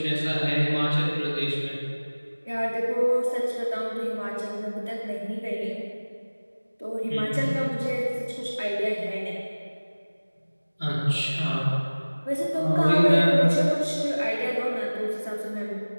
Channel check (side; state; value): both; inverted; correlation -1.00